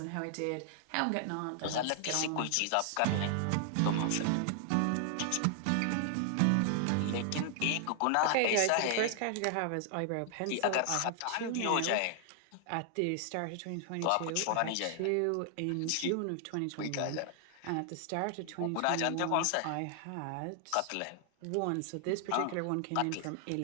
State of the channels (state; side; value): different; both; correlation 0.00